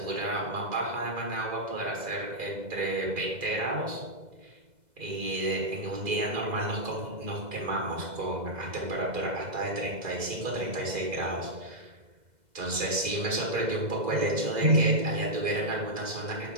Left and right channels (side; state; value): left; late; 2.0 ms